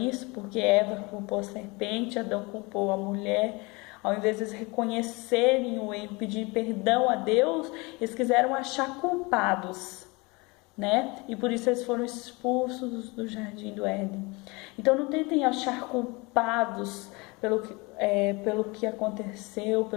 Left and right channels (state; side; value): quieter; right; 26.1 dB